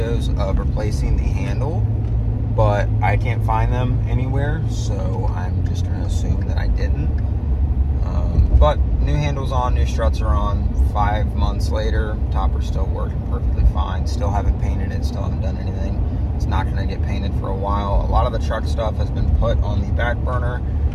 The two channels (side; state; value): both; identical; correlation 1.00